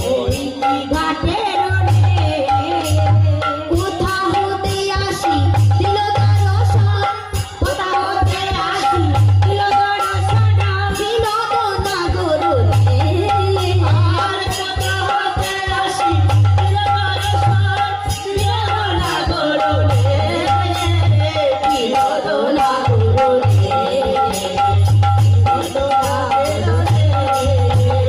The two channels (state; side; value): identical; both; correlation 1.00